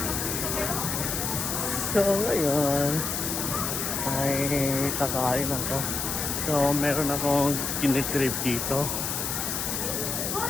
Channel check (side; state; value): left; noise; hiss, 2 dB below the sound